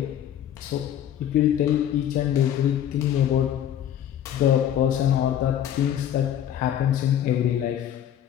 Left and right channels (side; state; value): right; quieter; 10.4 dB